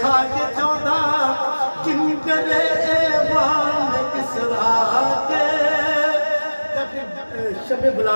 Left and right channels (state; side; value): inverted; both; correlation -1.00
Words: کھا کے 14 کنگرے ایوان کسرا کے۔ جب شب